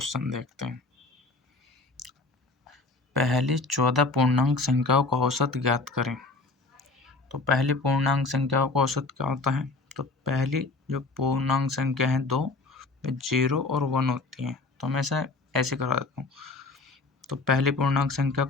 देखते हैं। पहली 14 पूर्णांक संख्याओं का औसत ज्ञात करें। तो पहली पूर्णांक संख्याओं का औसत क्या होता है? तो पहली जो पूर्णांक संख्या है 2, 0 और 1 होती है। तो मैं ऐसे करा देता हूँ। तो पहली पूर्णांक संख्या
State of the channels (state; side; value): quieter; right; 3.5 dB